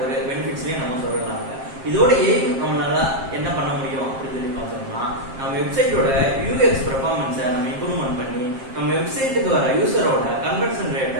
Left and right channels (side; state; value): left; late; 7.5 ms